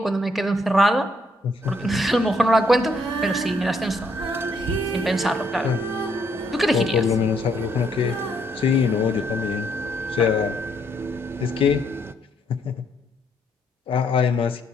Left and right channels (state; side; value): normal; both; correlation 0.71